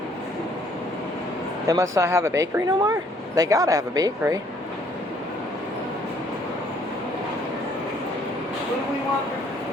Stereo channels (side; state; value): both; normal; correlation 0.63